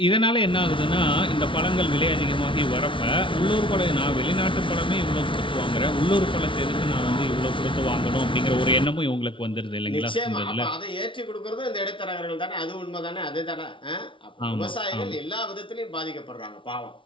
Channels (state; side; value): late; right; 0.25 ms